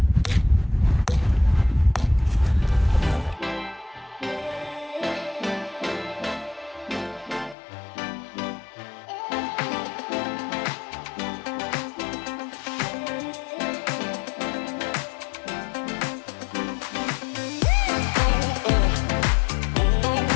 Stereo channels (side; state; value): right; drops out; at 7.6 s